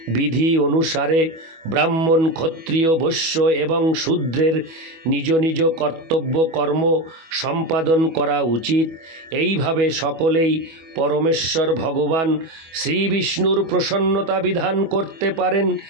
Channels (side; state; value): left; late; 25 ms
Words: বিধি অনুসারে ব্রাহ্মণ, ক্ষত্রিয়, বৈশ্য এবং শূদ্রের নিজ নিজ কর্তব্য কর্ম সম্পাদন করা উচিত। এইভাবে সকলেই পরমেশ্বর ভগবান শ্রী বিষ্ণুর প্রসন্নতা বিধান করতে পারেন।